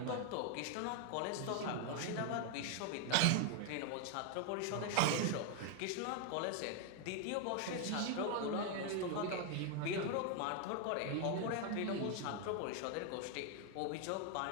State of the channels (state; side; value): different; both; correlation 0.00